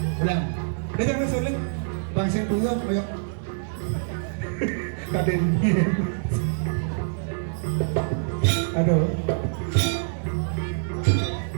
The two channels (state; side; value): silent; left; 61 dB below the other